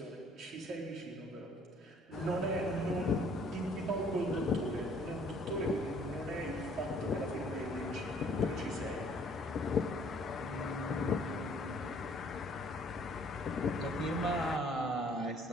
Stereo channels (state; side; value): normal; both; correlation 0.59